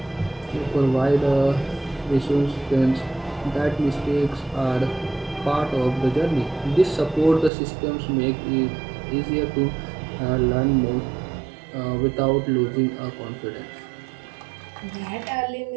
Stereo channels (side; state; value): left; drops out; at 7.5 s